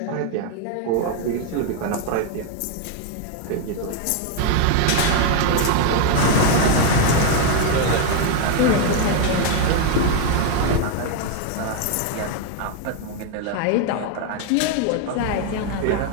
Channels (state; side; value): different; both; correlation 0.01